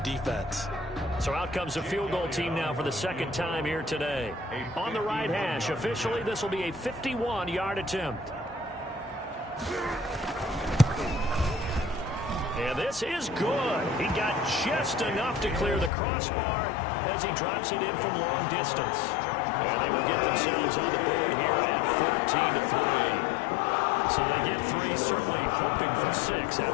defense. So out comes a field goal team now for the 2nd time here today. On the right hash, officially this will be a 51-yard attempt. And this is good. He got just enough to clear the crossbar as he drops it in from long distance. And they will get themselves on the board here at 14-3. So they get 3, certainly hoping for 6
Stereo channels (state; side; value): drops out; right; at 15.9 s